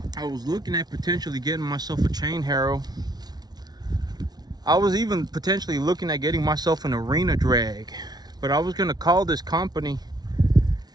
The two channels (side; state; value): left; late; 0.19 ms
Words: I was looking at potentially getting myself a chain harrow. I was even potentially looking at getting myself an arena drag, but I was gonna call this company,